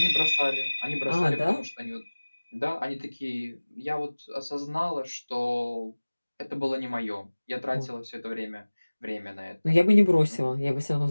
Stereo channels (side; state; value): both; inverted; correlation -1.00